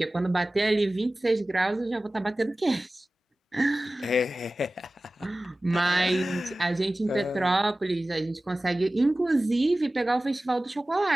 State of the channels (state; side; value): normal; both; correlation 0.97